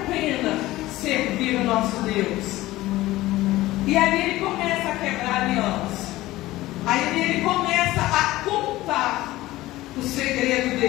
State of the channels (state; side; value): quieter; right; 17.2 dB